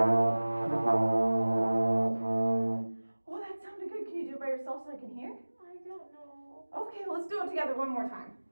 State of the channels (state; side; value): inverted; both; correlation -1.00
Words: that sounded good. Can you do it by yourself so I can hear? I don't know. Okay, let's do it together one more time.